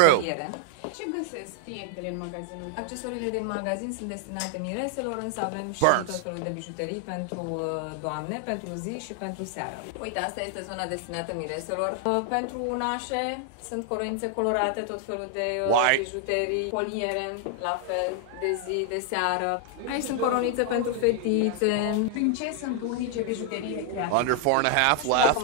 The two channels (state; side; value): different; both; correlation 0.00